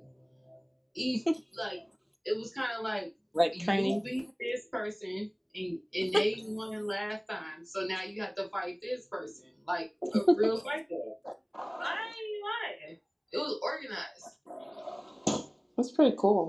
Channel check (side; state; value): both; identical; correlation 1.00